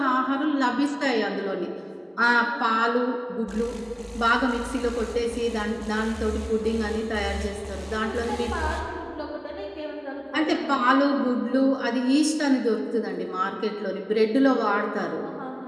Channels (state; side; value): identical; both; correlation 1.00